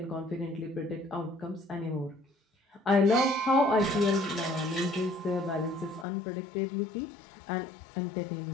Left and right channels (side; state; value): right; drops out; at 6.1 s